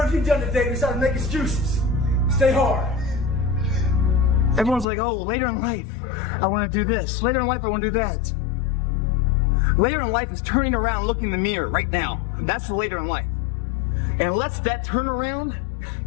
have you done today besides make excuses? Stay hard. Everyone's like, oh, later in life, I want to do this. Later in life, I want to do that. Later in life is turning around, looking in the mirror right now. That's the later in life. And unless that turnaround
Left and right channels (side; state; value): right; drops out; at 4.9 s